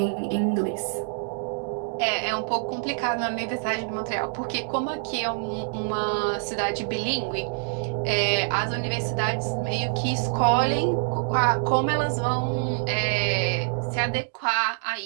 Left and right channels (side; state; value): left; silent; digital silence